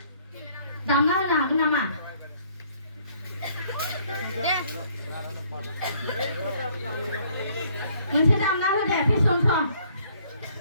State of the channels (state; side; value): inverted; both; correlation -0.63